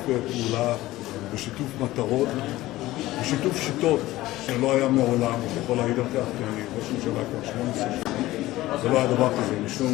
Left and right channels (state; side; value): quieter; right; 17.0 dB